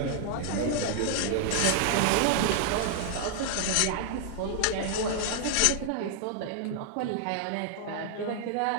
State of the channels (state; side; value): different; both; correlation 0.00